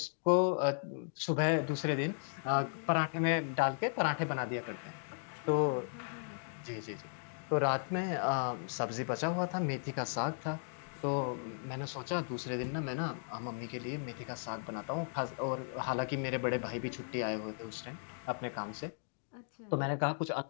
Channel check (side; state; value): right; silent; digital silence